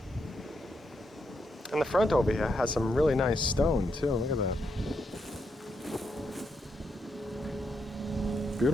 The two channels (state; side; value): normal; both; correlation 0.81